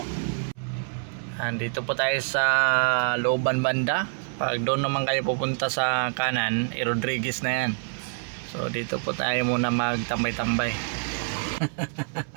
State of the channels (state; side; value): silent; left; 61 dB below the other